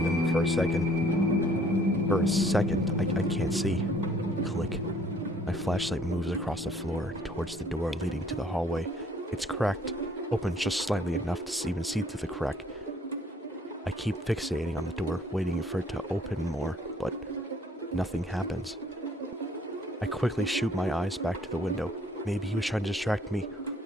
them for a second. For a second, I can't see. Click. My flashlight moves across the floor towards the door leading to the hallway. It's cracked, open just slightly enough to even see through the crack. I keep fixating on the door, waiting for it to open more, but nothing happens. I quickly shoot my eyes back to the window. Maybe he was trying to distract me.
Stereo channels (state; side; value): normal; both; correlation 0.59